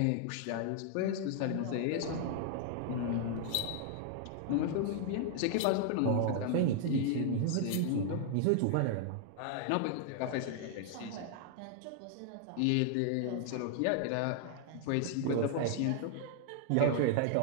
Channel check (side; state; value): both; different; correlation 0.00